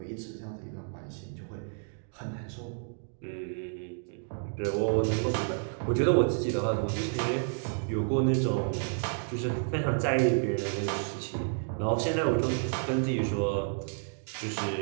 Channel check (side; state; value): left; silent; digital silence